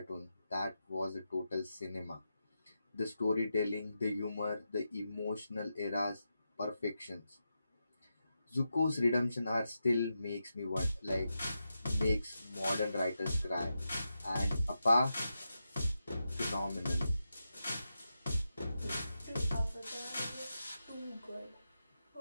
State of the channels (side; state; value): both; inverted; correlation -0.88